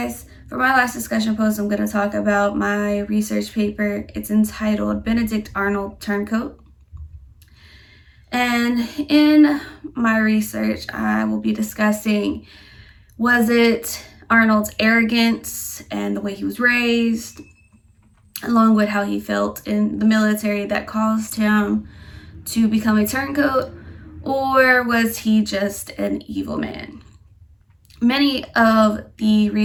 for my last discussion post, I'm going to talk about my research paper. It's entitled Benedict Arnold, Turncoat. And in my research, I will be discussing, was it Arnold's arrogance and the way he was raised, along with how he felt in the military that caused him to become a turncoat, or was he just an evil man? Many of the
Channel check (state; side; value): identical; both; correlation 1.00